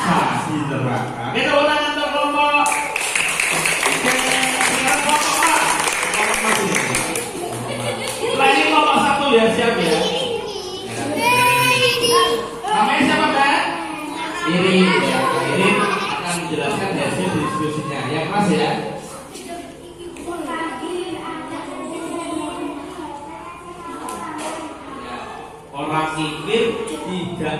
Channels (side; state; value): both; identical; correlation 1.00